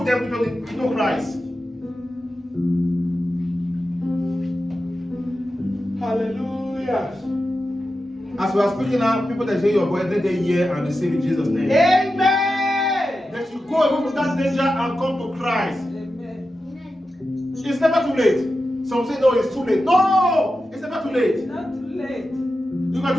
them into Christ. Hallelujah. As we are speaking now, people that hear your voice, let them hear and receive in Jesus' name. Amen. That you go away from that danger and come to Christ. Amen. It's never too late. Some say, no, it's too late. No, it's never too late. Not too late. You can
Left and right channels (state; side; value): normal; both; correlation 0.91